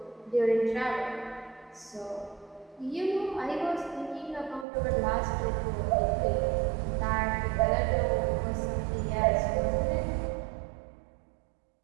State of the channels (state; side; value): drops out; left; at 4.7 s